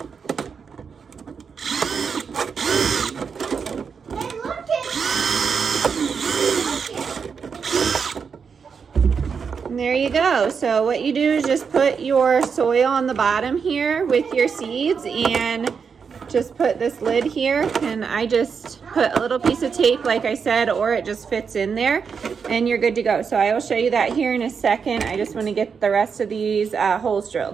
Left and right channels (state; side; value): quieter; left; 6.1 dB